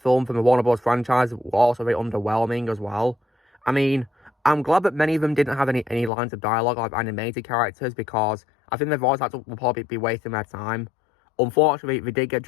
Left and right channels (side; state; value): right; drops out; at 6.1 s